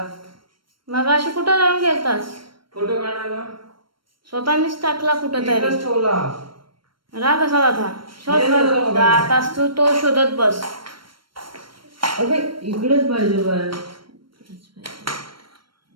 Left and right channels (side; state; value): left; late; 0.73 ms